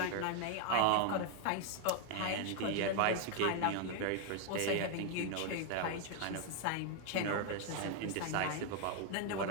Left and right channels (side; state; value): both; different; correlation 0.01